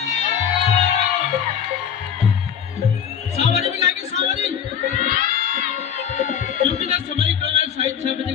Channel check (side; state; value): right; quieter; 8.2 dB